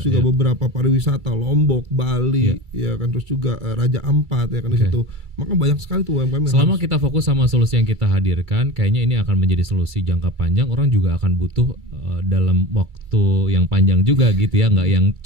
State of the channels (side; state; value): left; late; 2.3 ms